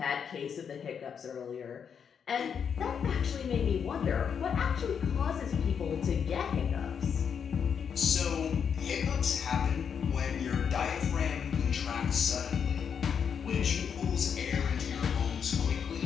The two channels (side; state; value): right; quieter; 7.2 dB